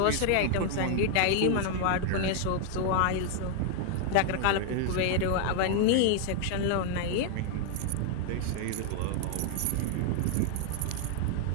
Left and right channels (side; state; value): both; different; correlation 0.00